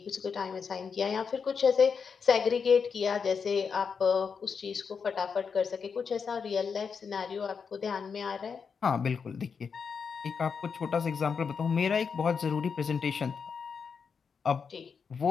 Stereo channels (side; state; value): right; quieter; 6.0 dB